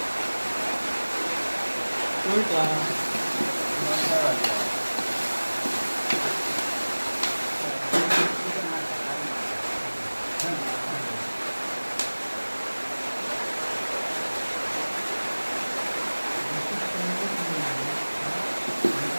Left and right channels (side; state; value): both; inverted; correlation -1.00